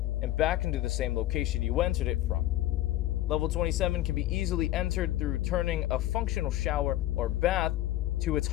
and back into the same location you entered it from. Level 27 can be easily entered through turning a functional shower or bath to its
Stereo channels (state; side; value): quieter; right; 15.0 dB